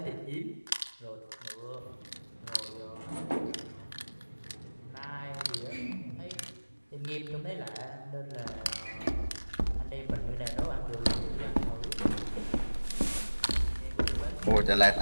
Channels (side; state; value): both; inverted; correlation -1.00